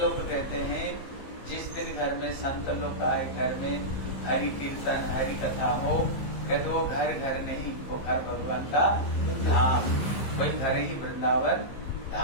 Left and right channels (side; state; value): right; late; 15 ms